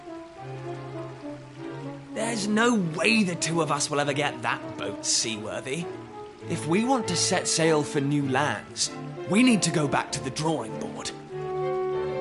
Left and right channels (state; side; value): identical; both; correlation 1.00